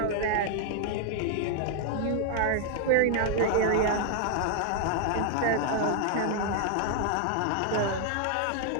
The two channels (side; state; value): both; different; correlation 0.00